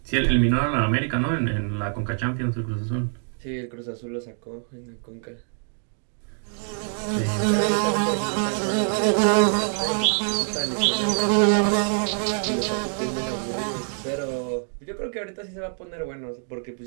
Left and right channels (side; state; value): left; silent; 59 dB below the other